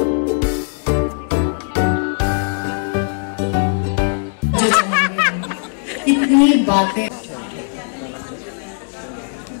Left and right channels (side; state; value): right; silent; digital silence